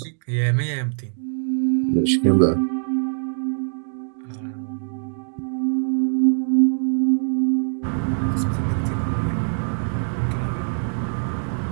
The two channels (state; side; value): silent; left; digital silence